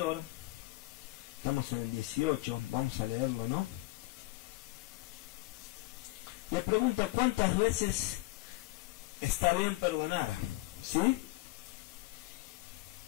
estamos en el 18, vamos a leerlo, ¿no? Le pregunta cuántas veces está bien perdonar, ¿sí?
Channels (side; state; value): right; quieter; 20.2 dB